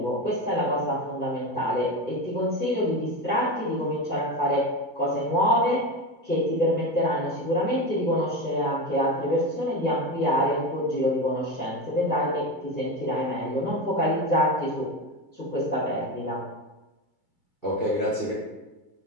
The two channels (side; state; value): right; late; 2.3 ms